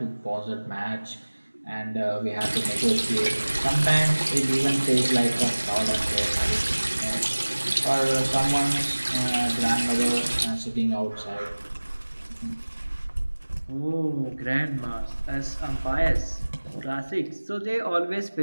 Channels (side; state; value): both; inverted; correlation -1.00